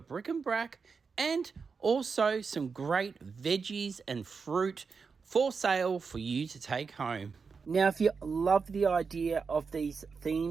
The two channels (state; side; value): quieter; left; 5.2 dB